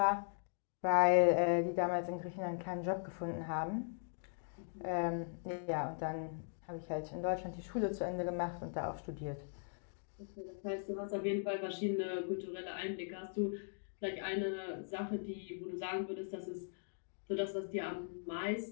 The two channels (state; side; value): silent; right; digital silence